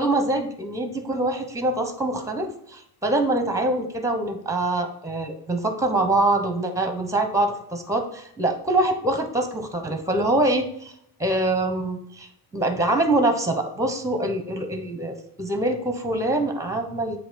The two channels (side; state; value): both; normal; correlation 0.39